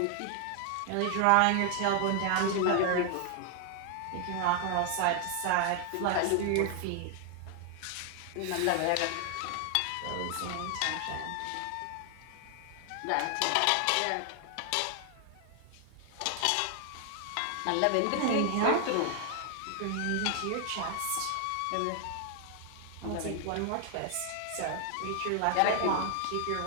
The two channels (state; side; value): different; both; correlation 0.00